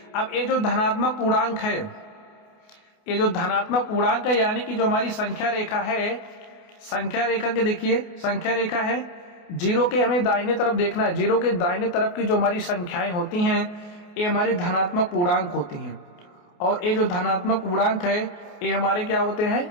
अब ये जो धनात्मक पूर्णांक है, ये जो धनात्मक पूर्णांक है यानी कि जो हमारी संख्या रेखा है, संख्या रेखा के देखिए, संख्या रेखा है 0 के हमें दाहिने तरफ देखना है। 0 के दाहिने तरफ की जो हमारी संख्याएं होती हैं ये हमारी धनात्मक पूर्णांक होती हैं। और ये जो धनात्मक पूर्णांक है ये हमारे क्या होते हैं,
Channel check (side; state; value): right; late; 28 ms